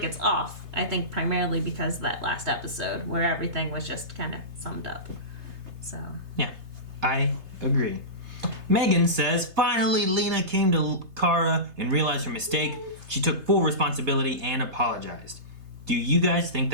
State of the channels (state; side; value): late; left; 3.3 ms